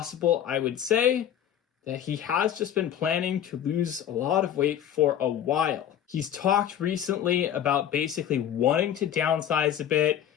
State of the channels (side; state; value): right; quieter; 10.1 dB